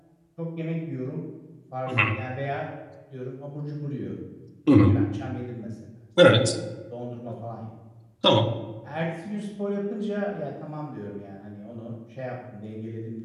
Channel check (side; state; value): both; identical; correlation 1.00